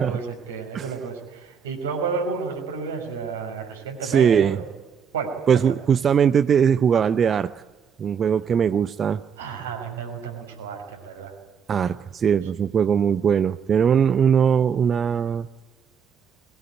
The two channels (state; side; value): quieter; left; 7.2 dB